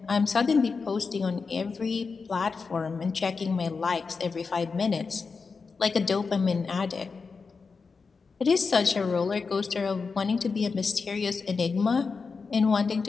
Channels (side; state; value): right; quieter; 4.8 dB